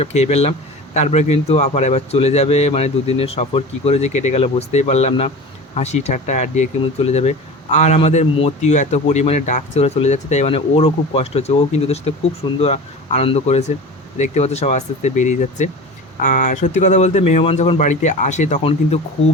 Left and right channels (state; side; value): normal; both; correlation 0.34